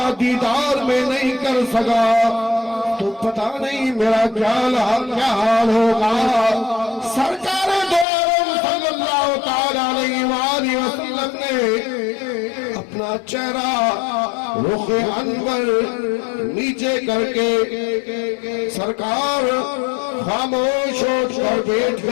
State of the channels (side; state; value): right; drops out; at 8.1 s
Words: دیدار میں نہیں کر سکا تو پتہ نہیں میرا کیا حال ہوگا سرکار دو عالم صلی اللہ تعالی علیہ وآلہ وسلم نے اپنا چہرہ رخ انور نیچے کر کے سرکار خاموش ہو کر بیٹھ